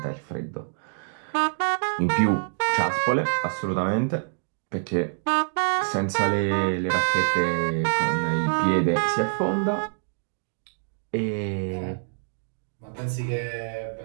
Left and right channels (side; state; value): left; silent; digital silence